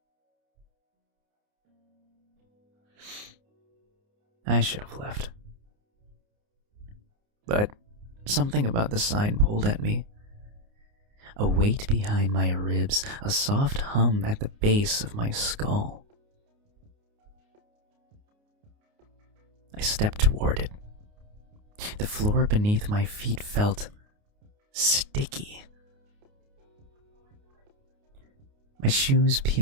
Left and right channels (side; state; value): left; late; 29 ms